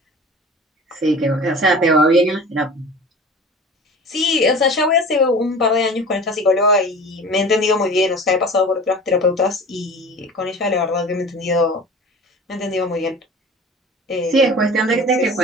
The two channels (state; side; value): normal; both; correlation 0.39